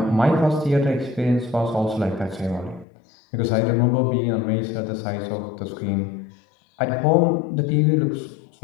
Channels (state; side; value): drops out; right; at 2.9 s